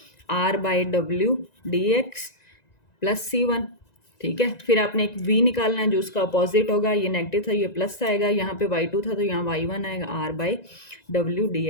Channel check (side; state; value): right; late; 1.9 ms